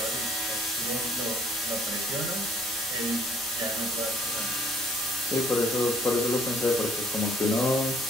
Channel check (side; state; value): both; normal; correlation 0.62